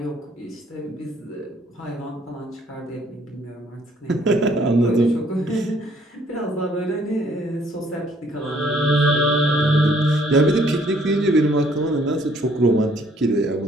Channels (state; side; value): normal; both; correlation 0.63